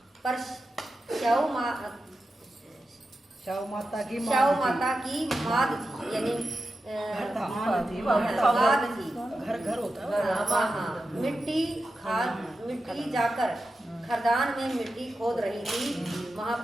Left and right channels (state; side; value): normal; both; correlation 0.91